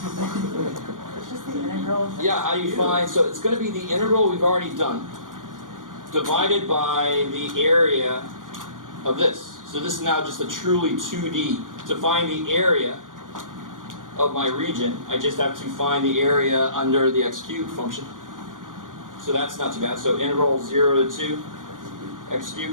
It's just the integral. Yeah, how do you find... So it's going to be the integral we've already done divided by the area of this. So this is now just a truly 2D. To find the area of my region, I just have to find the area under the x cubed function. So that's not too bad. So integral 0 to 2 x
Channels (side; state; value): left; late; 0.89 ms